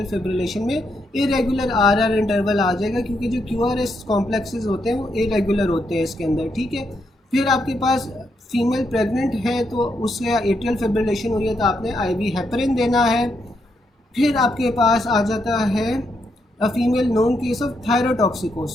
फिब्रिलेशन में इरेगुलर आरआर इंटरवल आ जाएगा, क्योंकि जो क्यूआरएस कॉम्प्लेक्सेस होते हैं वो इरेगुलर होते हैं इसके अंदर। ठीक है, फिर आपके पास फीमेल प्रेग्नेंट है तो उससे एट्रियल फिब्रिलेशन हुई है तो आपने आईवी हेपरिन देना है। फिर आपके पास आ जाता है a female known case of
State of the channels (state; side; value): normal; both; correlation 0.79